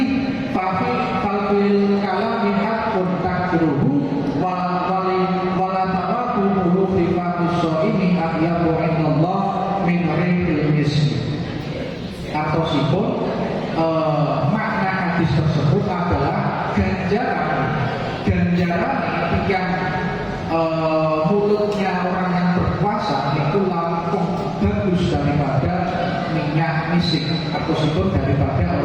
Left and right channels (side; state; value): both; identical; correlation 1.00